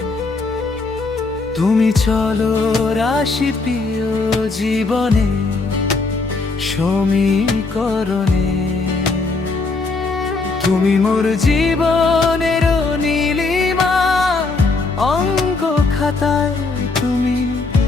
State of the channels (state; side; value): quieter; right; 3.8 dB